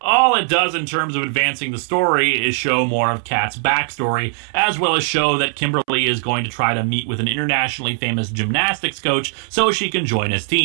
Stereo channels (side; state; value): left; silent; 67 dB below the other